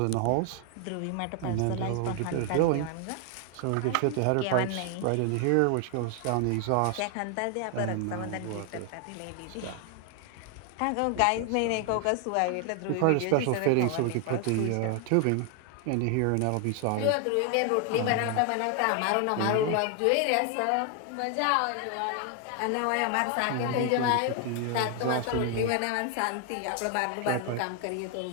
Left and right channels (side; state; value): both; different; correlation 0.00